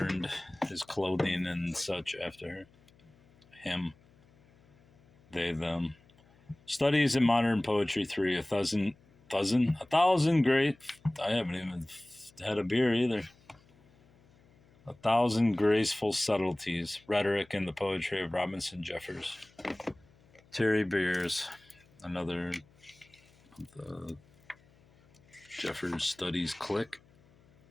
his clothing and such after him. They, them. Studies in Modern Poetry 3, a thousand great. I haven't even had a beer either. 1,000 graceful subtleties, rhetoric in the poetry of Robinson Jeffers. Terry Beers, another of the Jeffers Studies clique.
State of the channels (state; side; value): noise; left; hum, 30 dB below the sound